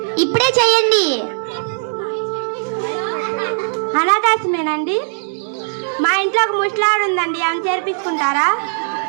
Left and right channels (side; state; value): left; silent; digital silence